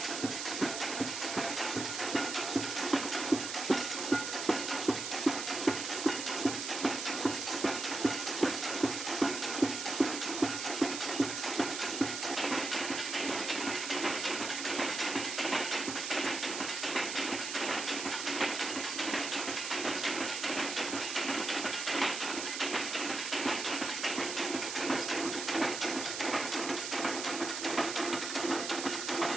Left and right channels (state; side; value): noise; right; hiss, 5 dB below the sound